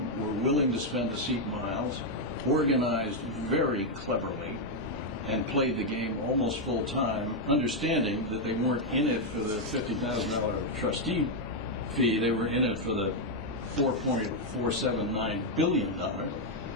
were willing to spend the seat miles, organized very cleverly, and played the game almost full time, understanding that they weren't in it for the $50,000 trustee fee, they were in it for the $4.479 billion.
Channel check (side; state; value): both; normal; correlation 0.01